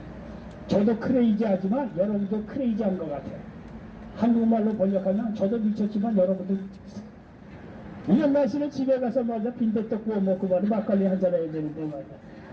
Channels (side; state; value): both; identical; correlation 1.00